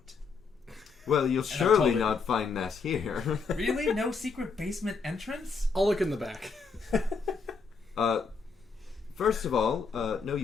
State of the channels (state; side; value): quieter; right; 4.9 dB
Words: Well, you'll I'm surely totally- not find that here. Really? No secret basement entrance? I'll look in the back. First of all, no,